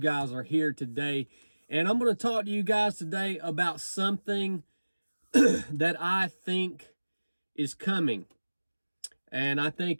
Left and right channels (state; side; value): inverted; both; correlation -1.00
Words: are here today, and I'm going to talk to you guys today about something that I think is coming, and I